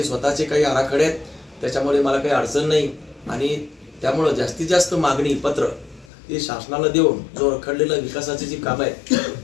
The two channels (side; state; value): right; drops out; at 6.1 s